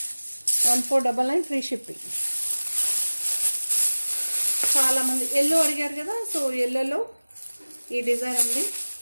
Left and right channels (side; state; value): both; inverted; correlation -1.00